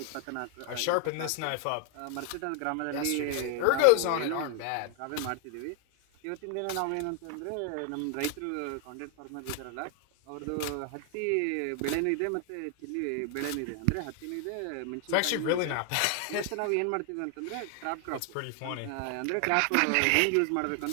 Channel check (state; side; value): different; both; correlation 0.00